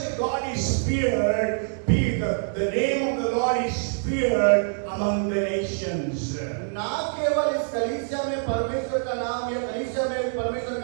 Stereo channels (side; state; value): left; silent; 56 dB below the other